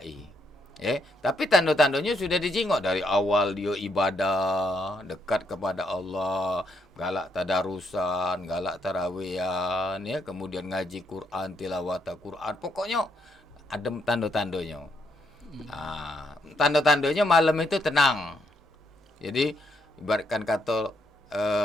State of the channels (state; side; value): normal; both; correlation 0.75